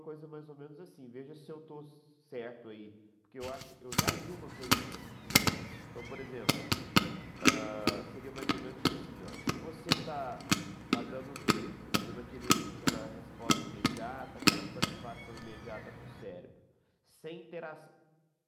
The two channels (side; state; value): both; identical; correlation 1.00